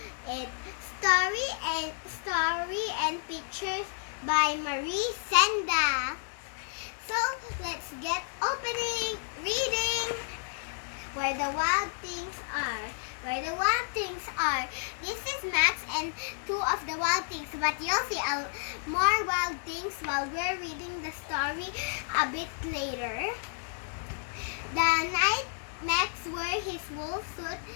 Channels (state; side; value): silent; right; 57 dB below the other